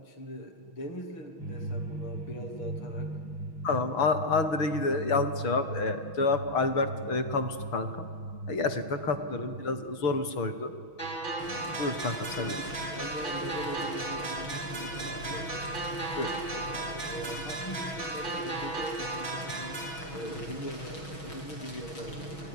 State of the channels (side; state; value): right; late; 6.2 ms